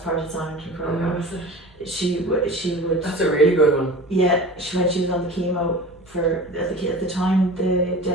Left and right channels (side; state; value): both; normal; correlation 0.38